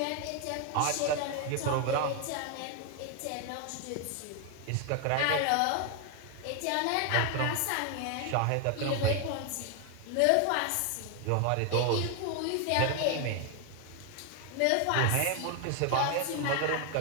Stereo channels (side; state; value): both; different; correlation 0.01